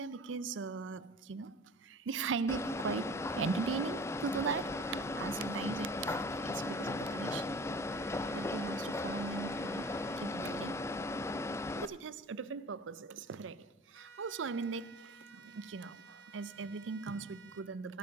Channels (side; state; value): both; normal; correlation 0.42